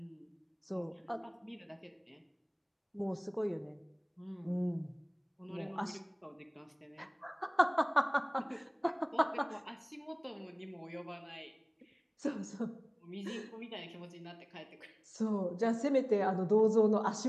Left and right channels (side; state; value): both; identical; correlation 1.00